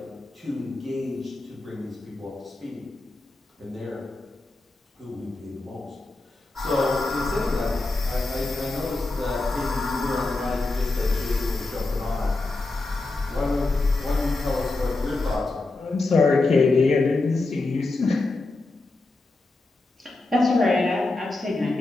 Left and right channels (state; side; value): quieter; right; 3.2 dB